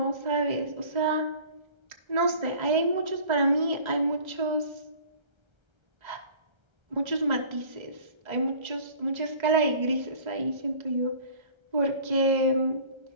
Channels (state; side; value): late; left; 1.3 ms